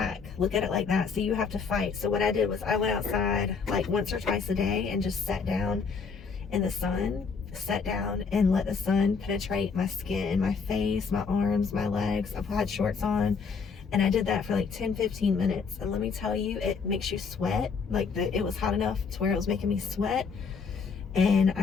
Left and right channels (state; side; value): quieter; right; 5.4 dB